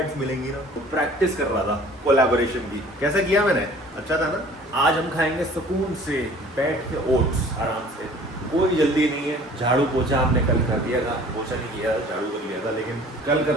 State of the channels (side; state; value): both; normal; correlation 0.49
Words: मिलेंगी ना। तो प्रैक्टिस कर रहा था कोलैबोरेशन की। कैसा किया मैंने? अच्छा था ना? आज हम खाएंगे सुकून से बैठ के ओट्स आराम से। कोई जल्दी नहीं है। झाड़ू पोछा हमने कल कर दिया था, पोछा नहीं किया था, झाड़ू कर लिया था, लेकिन कल